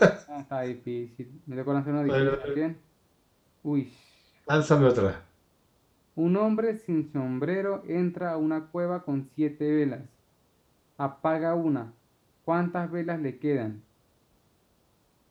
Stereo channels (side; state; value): both; identical; correlation 1.00